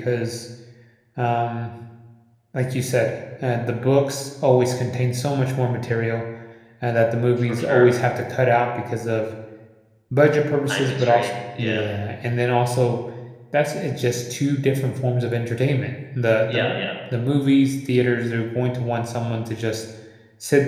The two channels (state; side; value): identical; both; correlation 1.00